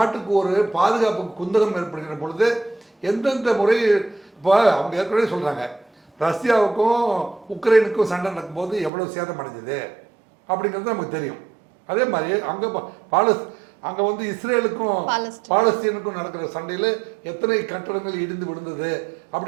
ஒரு பாதுகாப்பு குந்தகம் ஏற்படுகிற பொழுது எந்தெந்த முறை, இப்போ அவங்க ஏற்கனவே சொல்கிறாங்க, ரஷ்யாவுக்கும் உக்ரைனுக்கும் சண்டை நடக்கும்போது எவ்வளோ சேதம் அடைஞ்சது அப்படிங்கிறது நமக்கு தெரியும். அதே மாதிரி அங்கே வந்து இஸ்ரேலுக்கும் பாலஸ்தீனுக்கும் நடக்கிற சண்டையில் எத்தனை கட்டடங்கள் இடிந்து விழுந்தது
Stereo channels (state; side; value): drops out; left; at 8.9 s